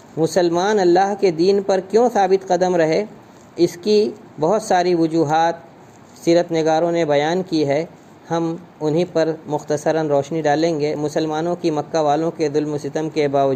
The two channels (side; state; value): both; identical; correlation 1.00